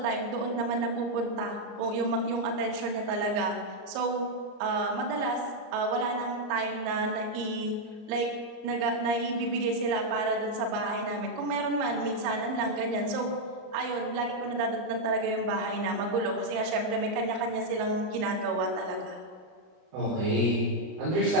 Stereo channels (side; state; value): left; late; 38 ms